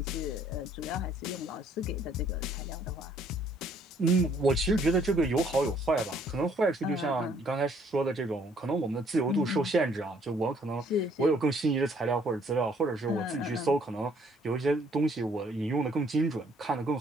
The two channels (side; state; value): both; normal; correlation 0.63